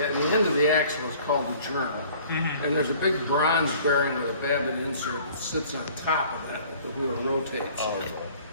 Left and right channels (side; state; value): both; inverted; correlation -0.52